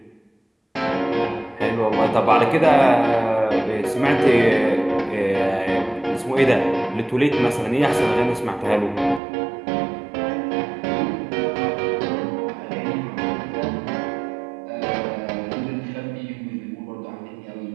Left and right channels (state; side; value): drops out; left; at 9.2 s